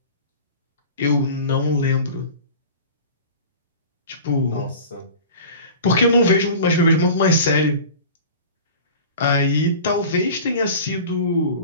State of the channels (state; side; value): inverted; both; correlation -0.38